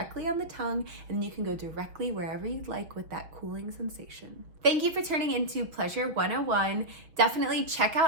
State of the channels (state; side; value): late; left; 6.1 ms